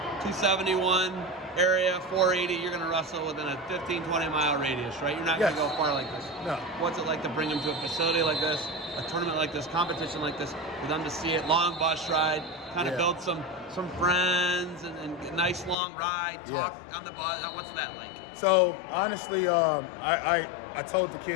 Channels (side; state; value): right; drops out; at 15.8 s